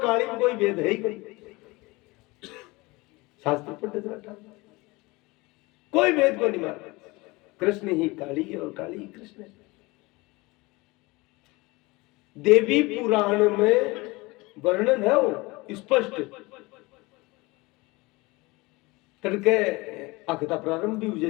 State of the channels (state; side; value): quieter; right; 23.3 dB